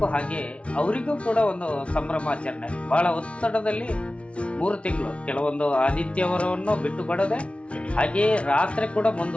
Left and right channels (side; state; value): right; late; 0.061 ms